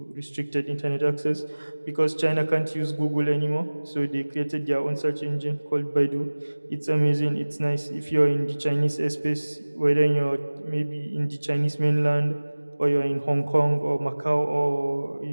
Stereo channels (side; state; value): both; inverted; correlation -1.00